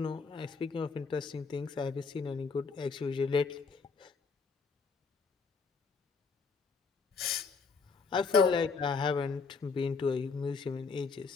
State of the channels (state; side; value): quieter; right; 4.9 dB